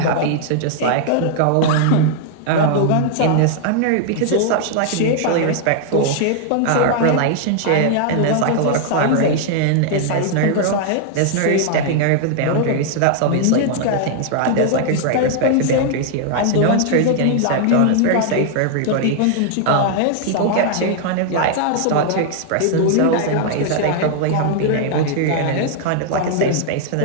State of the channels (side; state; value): both; different; correlation 0.00